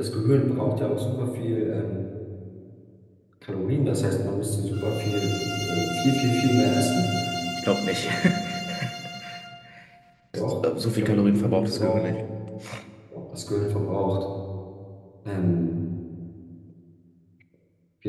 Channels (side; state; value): both; identical; correlation 1.00